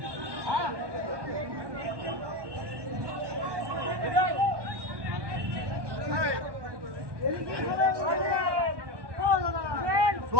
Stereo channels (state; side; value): late; left; 1.1 ms